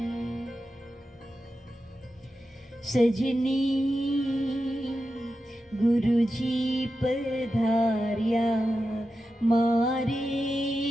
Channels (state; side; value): normal; both; correlation 0.91